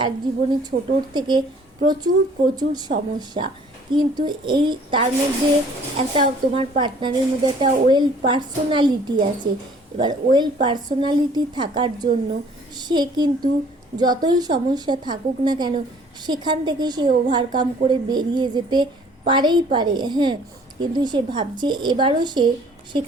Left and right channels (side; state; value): both; normal; correlation 0.55